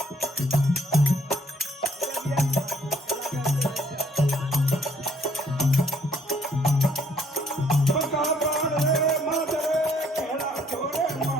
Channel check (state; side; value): normal; both; correlation 0.65